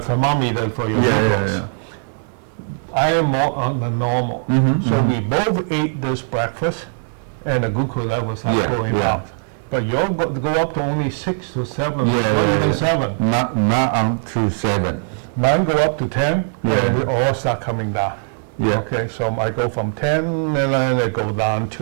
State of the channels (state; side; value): silent; left; 63 dB below the other